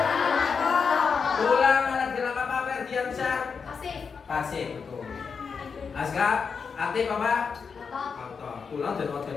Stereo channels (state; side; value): quieter; right; 5.7 dB